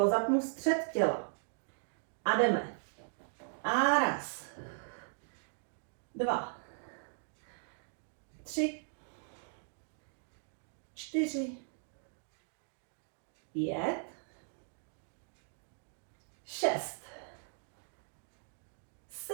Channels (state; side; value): silent; left; digital silence